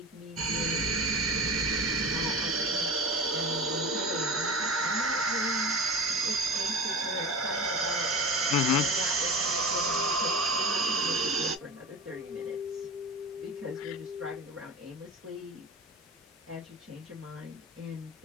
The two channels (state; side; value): normal; both; correlation 0.32